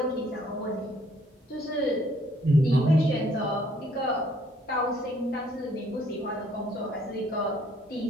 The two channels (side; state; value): both; normal; correlation 0.63